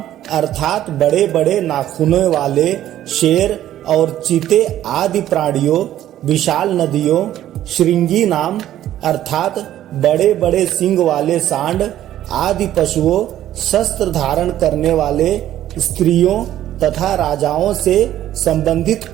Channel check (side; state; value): left; quieter; 12.5 dB